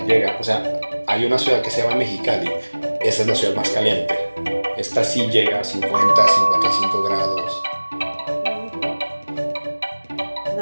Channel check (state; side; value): inverted; both; correlation -1.00